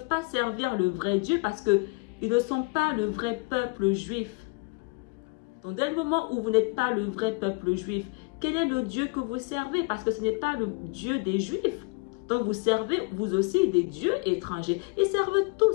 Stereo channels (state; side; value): quieter; right; 28.3 dB